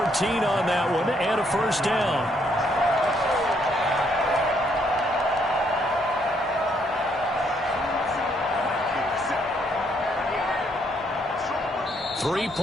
on that one and a first down. 3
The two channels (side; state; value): both; normal; correlation 0.71